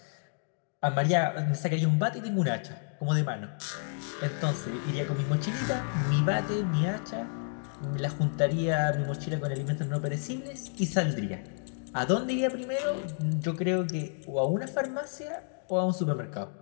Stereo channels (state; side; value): silent; right; digital silence